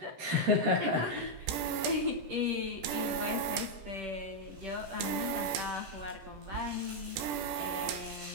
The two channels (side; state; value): left; late; 17 ms